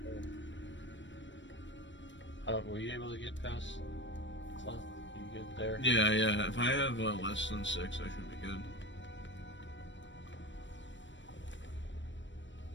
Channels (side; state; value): right; late; 0.54 ms